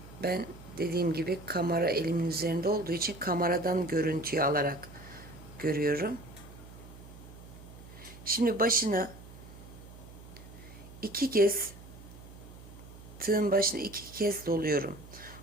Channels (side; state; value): right; noise; hum, 17 dB below the sound